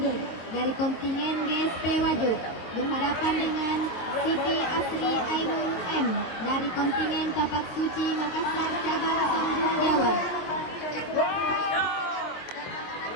dari kontingen GSP Wajo berhadapan dengan Siti Asri Ainul M dari kontingen Tapak Suci Makassar cabang Sambung Jawa.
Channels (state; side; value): late; right; 23 ms